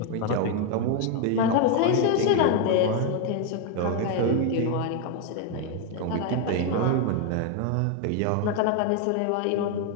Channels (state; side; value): different; both; correlation 0.01